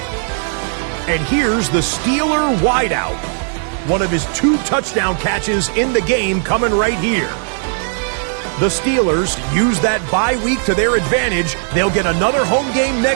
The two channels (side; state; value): left; silent; digital silence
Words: And here's the Steeler wideout. One of his 2 touchdown catches in the game coming right here. The Steelers use that bye week to their advantage. They'll get another home game